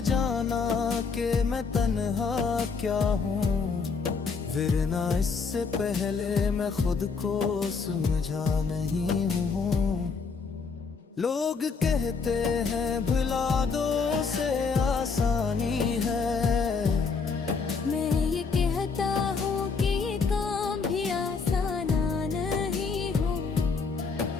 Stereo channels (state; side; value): quieter; right; 5.0 dB